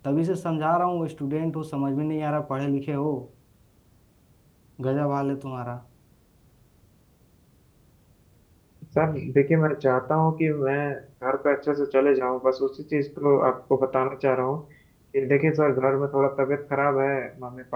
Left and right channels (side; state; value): both; identical; correlation 1.00